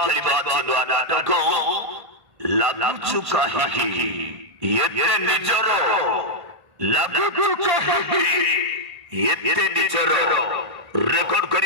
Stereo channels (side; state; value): left; late; 1.8 ms